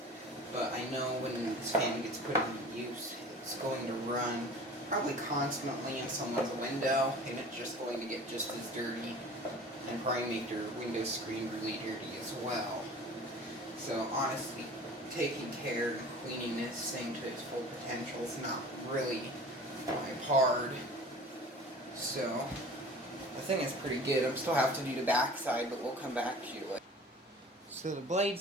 but I know when this fan gets put into use, it's going to run probably constantly in someone's window, and it's just going to get just as dirty, and probably make their window screen really dirty as well. So honestly, taking care and cleaning this thing to its full potential is not really hard. So the thing is pretty good. I still have to do the back side, but we'll come back to you later. So the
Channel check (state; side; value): normal; both; correlation 0.42